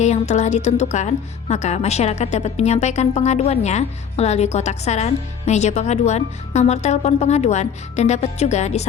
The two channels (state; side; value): quieter; right; 7.5 dB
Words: yang telah ditentukan, maka masyarakat dapat menyampaikan pengaduannya melalui kotak saran, meja pengaduan, nomor telepon pengaduan, dan dapat juga